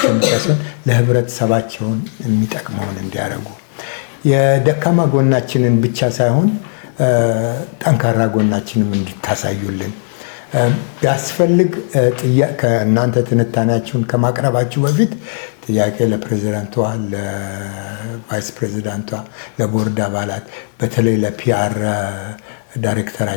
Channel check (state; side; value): silent; right; digital silence